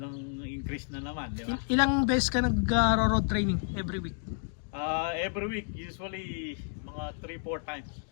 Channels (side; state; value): right; silent; 57 dB below the other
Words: increase na naman, di ba? Ilang beses ka nag-road training every week? Every week, usually mga 3-4 times.